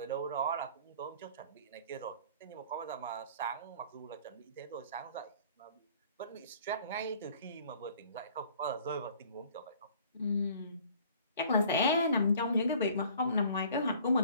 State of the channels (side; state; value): both; inverted; correlation -0.53